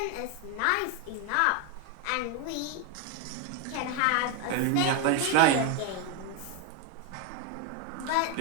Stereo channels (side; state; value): both; different; correlation 0.01